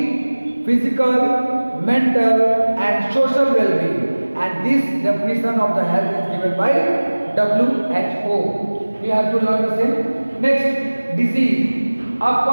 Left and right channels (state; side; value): inverted; both; correlation -1.00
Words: physical, mental and social well-being, and this definition of the health is given by WHO. We have to learn the same. Next, disease.